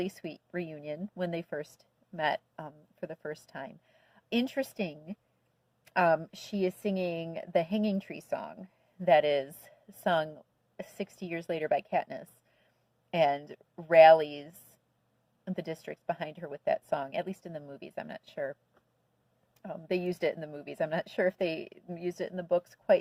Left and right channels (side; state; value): both; identical; correlation 1.00